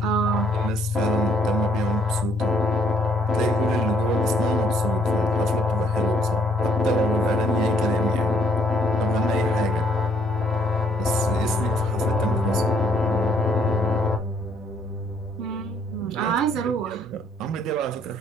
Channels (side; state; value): both; normal; correlation 0.67